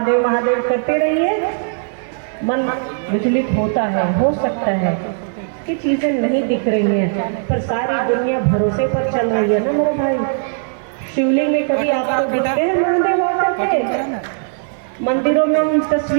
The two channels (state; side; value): silent; left; 65 dB below the other